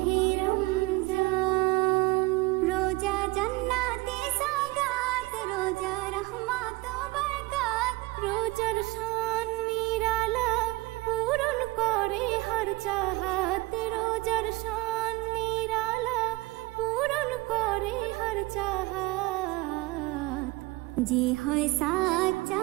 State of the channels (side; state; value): left; quieter; 22.1 dB